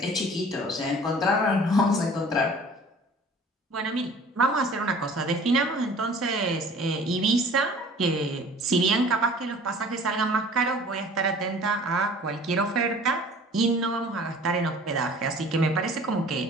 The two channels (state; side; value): normal; both; correlation 0.47